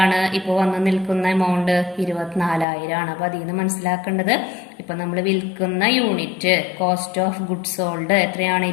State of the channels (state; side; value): drops out; right; at 2.7 s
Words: ഇപ്പൊ വന്ന് നിൽക്കുന്ന എമൗണ്ട്? 24,000 ആണ്. അപ്പൊ അതിൽ നിന്ന് മനസ്സിലാക്കേണ്ടത്, ഇപ്പൊ നമ്മൾ വിൽക്കുന്ന unit cost of goods sold എത്രയാണ്?